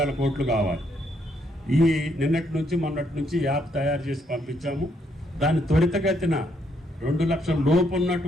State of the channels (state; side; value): normal; both; correlation 0.73